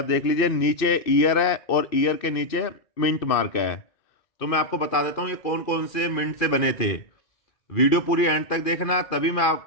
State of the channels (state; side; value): late; right; 2.4 ms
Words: देख लीजिए, नीचे ईयर है और ईयर के नीचे मिंट मार्क है। तो मैं आपको बता देता हूँ ये कौन कौन से मिंट से बने थे। वीडियो पूरी एंड तक देखना, तभी मैं